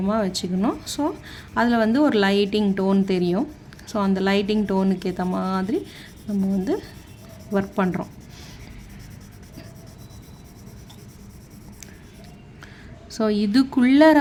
வச்சுக்கணும். ஸோ அதில் வந்து ஒரு லைட்டிங் டோன் தெரியும். ஸோ அந்த லைட்டிங் டோனுக்கு ஏற்ற மாதிரி நம்ம வந்து ஒர்க் பண்ணுறோம். ஸோ இதுக்குள்ளர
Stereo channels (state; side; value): identical; both; correlation 1.00